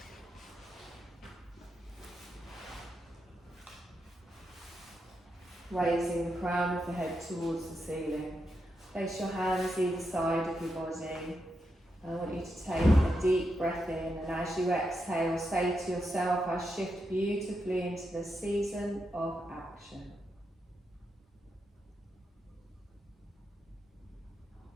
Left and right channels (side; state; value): both; normal; correlation 0.85